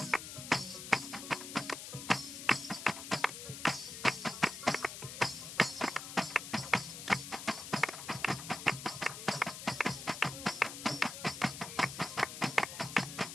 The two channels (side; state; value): left; noise; hiss, 9 dB below the sound